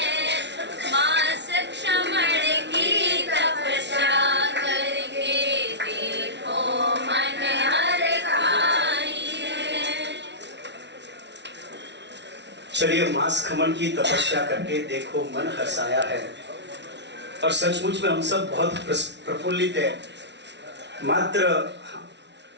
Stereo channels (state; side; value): late; left; 0.51 ms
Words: माँ सक्षमण की तपस्या करके देखो मन हर खाई है। चलिए, मांस खमन की तपस्या करके देखो मन हर्षाया है। और सचमुच में हम सब बहुत प्रफुल्लित है।